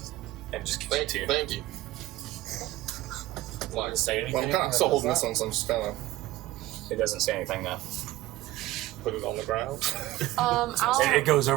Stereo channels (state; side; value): quieter; left; 16.6 dB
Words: And just gives it to you. Thank you. Like, Say anything? well, I'm kind of still holding this one, so I'm just kind of It doesn't say anything now. Put it on the ground. It goes